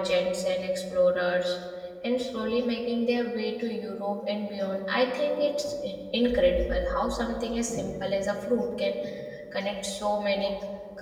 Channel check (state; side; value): identical; both; correlation 1.00